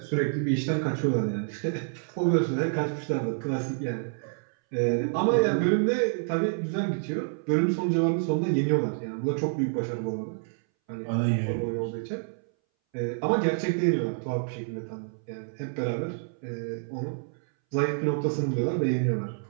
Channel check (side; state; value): left; silent; 59 dB below the other